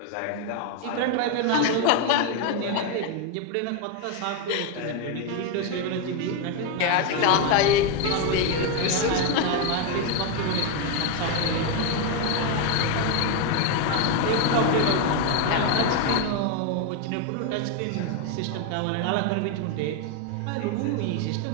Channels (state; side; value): different; both; correlation 0.01